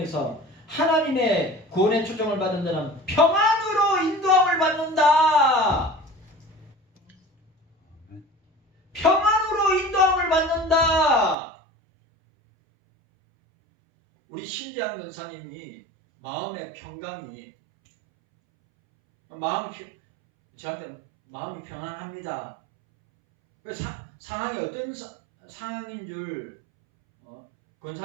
하나님의 구원의 초청을 받은 자는 평안으로 인도함을 받는다. 평안으로 인도함을 받는다. 우리 신재한 권사님이 마음의 평강이 저한테 마음이 평안합니다. 상황이 어떤 상황인 줄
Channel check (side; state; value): left; drops out; at 11.4 s